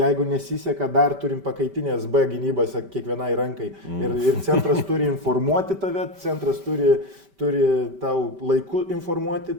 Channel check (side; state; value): left; late; 5.1 ms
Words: nesiseka, dar turim pakaitinės B gynybas kiekvienai rankai. Ir centras turi informuoti tave, centras turi tau laiku informuoti,